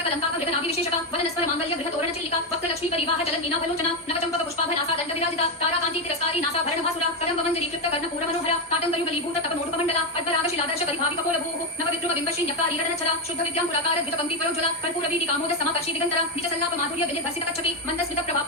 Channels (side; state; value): both; normal; correlation 0.08